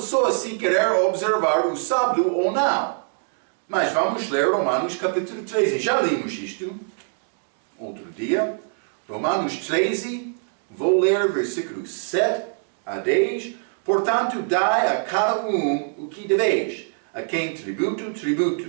se querer observar o sábado ou não. Mas vamos ler Romanos capítulo 13. Já limos isto. outro dia. Romanos 13, vou ler versículos 7 a 10. Portanto, dai a cada o que deveis. A quem tributo,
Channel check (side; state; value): left; silent; 60 dB below the other